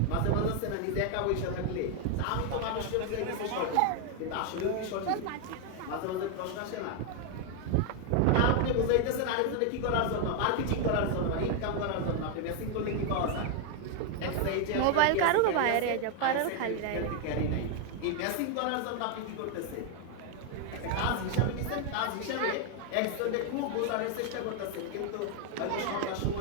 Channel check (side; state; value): both; different; correlation 0.00